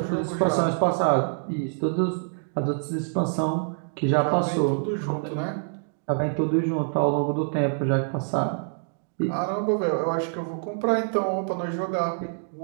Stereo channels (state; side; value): silent; left; digital silence